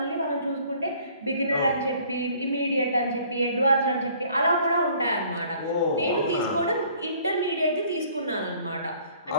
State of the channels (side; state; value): both; inverted; correlation -0.57